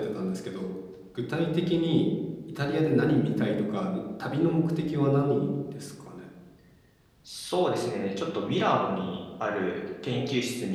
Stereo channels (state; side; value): identical; both; correlation 1.00